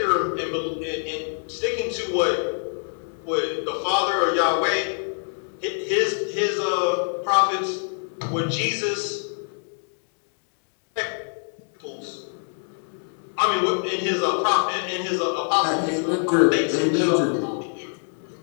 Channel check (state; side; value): silent; right; 62 dB below the other